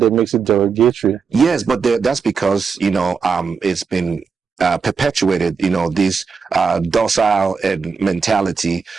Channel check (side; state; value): left; quieter; 5.5 dB